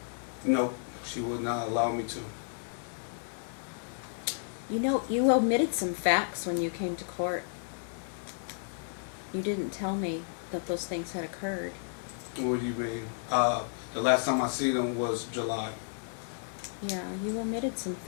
No, she would not allow me to. You know, you omitted some facts when you came to court. You didn't tell me that those things had occurred. What do you mean? The last time I see them was July. Yeah, you omitted some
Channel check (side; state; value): right; silent; digital silence